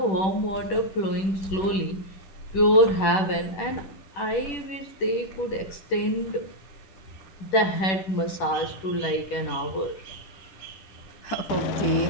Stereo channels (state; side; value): late; right; 10 ms